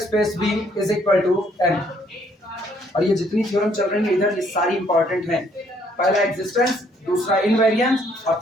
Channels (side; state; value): both; normal; correlation 0.66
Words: v is equal to n। और ये जितनी थ्योरम चल रही है इधर ये सारी इंपॉर्टेंट हैं। पहला एग्जिस्टेंस, दूसरा इनवेरिएंस और